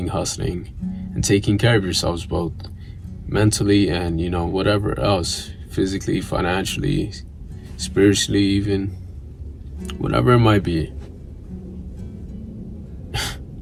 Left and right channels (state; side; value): identical; both; correlation 1.00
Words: hustling, and taking care of yourselves both mentally and, you know, whatever else, physically, financially, spiritually, even whatever it might be.